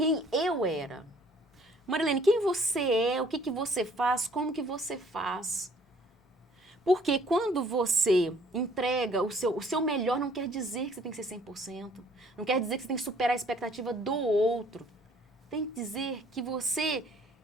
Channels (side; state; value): both; normal; correlation 0.58